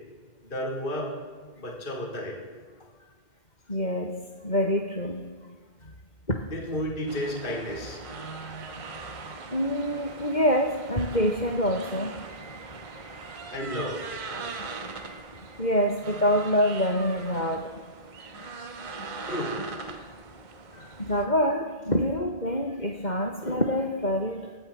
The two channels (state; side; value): late; right; 2.1 ms